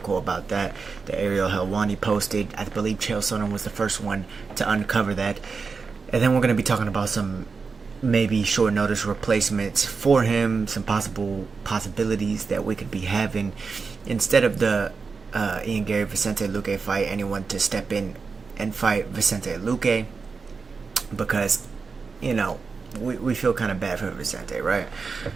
about that that Ariel Helwani posted. I believe Chael Sonnen was the first one to uncover that. And then we're going to be talking about some maybe short notice replacements for him, some possibilities that we could be having instead of the Ian Garry Vicente Luque fight, anyone to step in and fight Vicente Luque, because we feel kind of bad for Vicente, right?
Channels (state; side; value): quieter; left; 4.8 dB